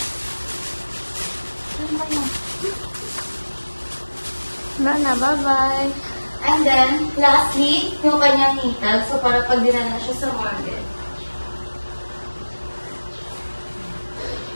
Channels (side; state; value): both; inverted; correlation -1.00